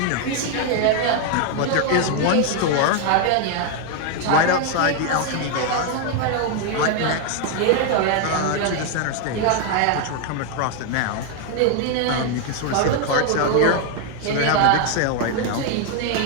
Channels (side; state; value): both; different; correlation 0.01